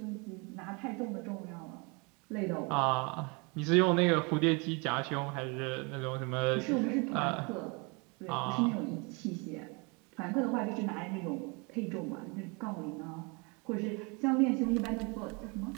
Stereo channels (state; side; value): quieter; left; 30.6 dB